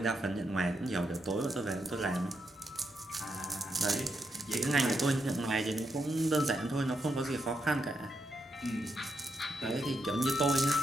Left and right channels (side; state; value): both; normal; correlation 0.81